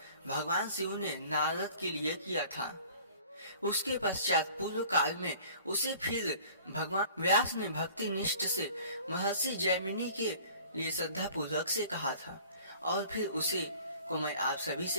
भगवान शिव ने नारद के लिए किया था। उसके पश्चात पूर्व काल में उसे फिर भगवान व्यास ने भक्ति निष्ठ से महर्षि जैमिनी के लिए श्रद्धा पूर्वक से कहा था और फिर उसे को मैं आप सभी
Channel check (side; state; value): both; inverted; correlation -0.48